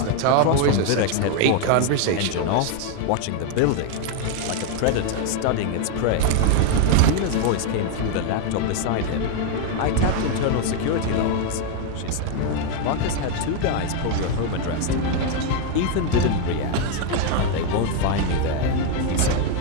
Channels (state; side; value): different; both; correlation 0.01